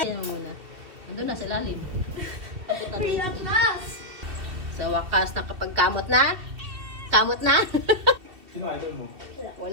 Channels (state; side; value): late; left; 2.8 ms